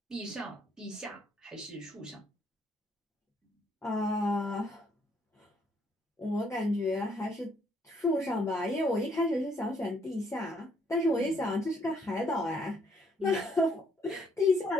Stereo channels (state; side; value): normal; both; correlation 0.69